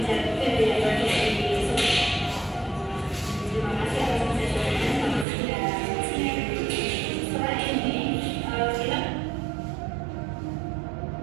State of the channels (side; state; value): left; drops out; at 5.2 s